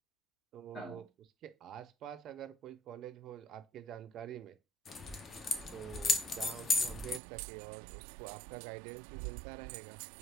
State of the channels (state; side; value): drops out; left; at 7.2 s